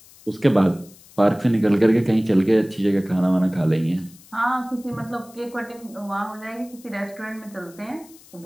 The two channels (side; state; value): left; noise; hiss, 24 dB below the sound